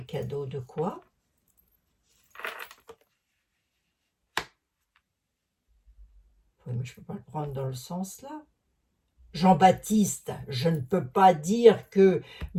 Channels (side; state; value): both; identical; correlation 1.00